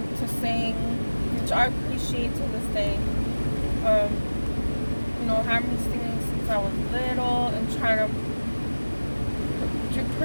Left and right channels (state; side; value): inverted; both; correlation -1.00